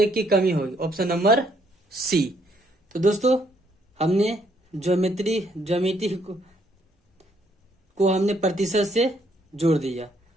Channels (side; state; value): both; normal; correlation 0.69